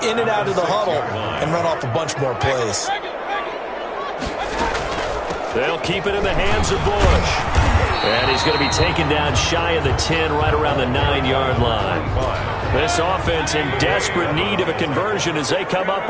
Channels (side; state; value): both; identical; correlation 1.00